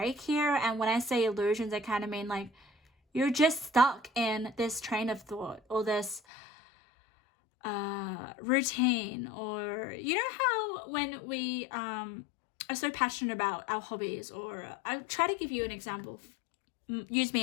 here, and when I say illusions, I kind of mean like you're just stuck in this train of thought or this routine, or you know how when we are so passionate about our hobbies, or I'll try to give you an example, use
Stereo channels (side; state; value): right; drops out; at 6.2 s